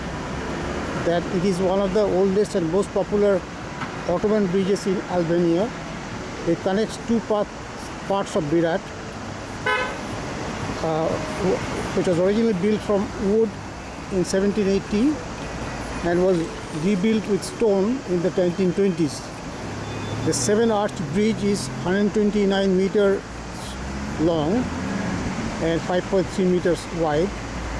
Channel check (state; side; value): identical; both; correlation 1.00